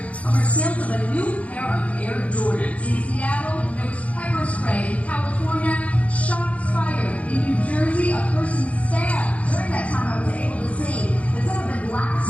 over sales of a new pair of Air Jordans. In Seattle, there was pepper spray. In California, shots fired. In New Jersey, a person stabbed. During that time, I was able to see that some of the glass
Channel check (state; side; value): late; right; 0.066 ms